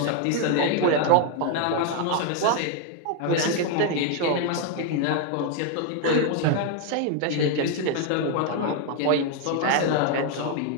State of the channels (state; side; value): different; both; correlation 0.01